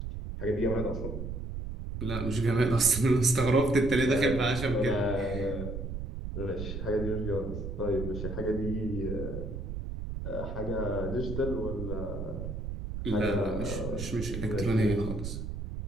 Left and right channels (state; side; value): noise; right; rumble, 5 dB below the sound